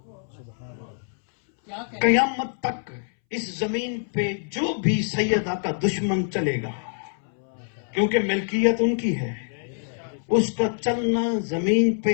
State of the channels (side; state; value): right; silent; 62 dB below the other